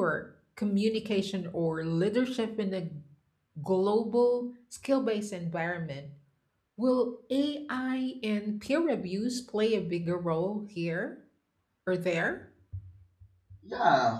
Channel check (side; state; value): both; identical; correlation 1.00